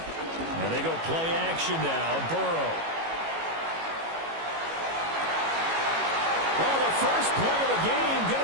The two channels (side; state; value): left; late; 18 ms